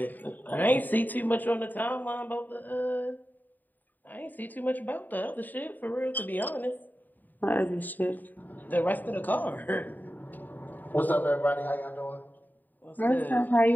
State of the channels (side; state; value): right; late; 0.087 ms